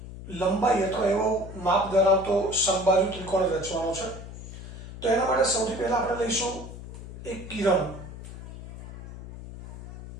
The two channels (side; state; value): left; noise; hum, 12 dB below the sound